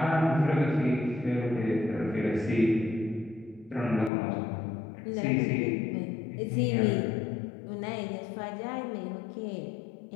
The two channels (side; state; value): right; drops out; at 4.1 s